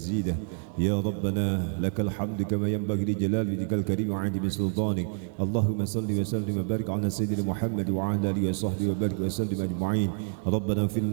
يا ربنا لك الحمد كما ينبغي لجلال وجهك الكريم وعظيم سلطانك اللهم صل وسلم وبارك على سيدنا محمد وعلى آله وصحبه وبارك وسلم أجمعين. ربنا اغفر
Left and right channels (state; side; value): silent; left; 58 dB below the other